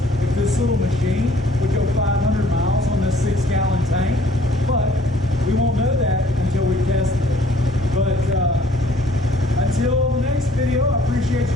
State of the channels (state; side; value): normal; both; correlation 0.58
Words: if this little machine would go 500 miles on this 6-gallon tank, but we won't know that until we test it. But until the next video, I appreciate